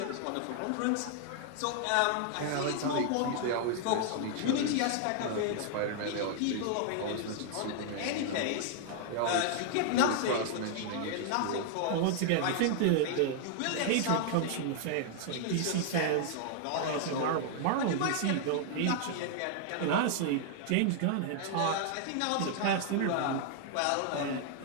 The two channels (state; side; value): different; both; correlation 0.00